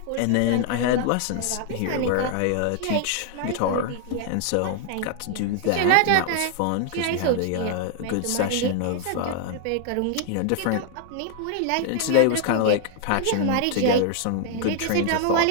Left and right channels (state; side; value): different; both; correlation 0.00